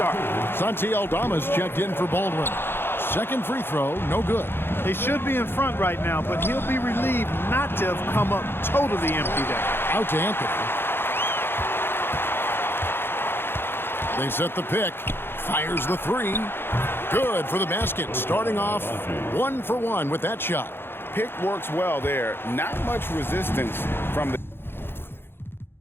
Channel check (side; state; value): right; late; 0.11 ms